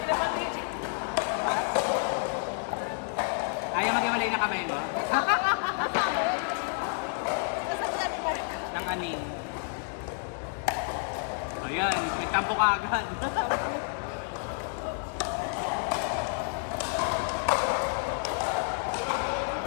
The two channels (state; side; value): silent; right; 58 dB below the other